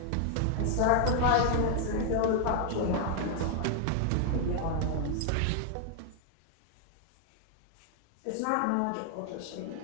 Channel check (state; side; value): different; both; correlation 0.00